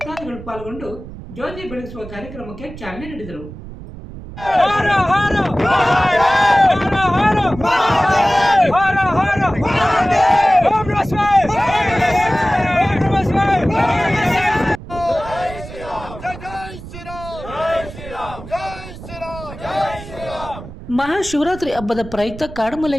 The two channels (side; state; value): right; noise; rumble, 14 dB below the sound